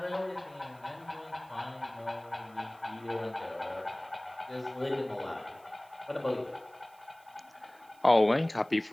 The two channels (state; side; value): noise; right; hiss, 29 dB below the sound